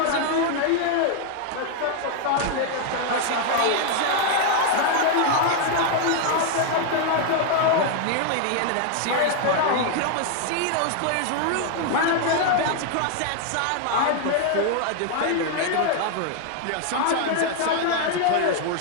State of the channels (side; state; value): both; different; correlation 0.00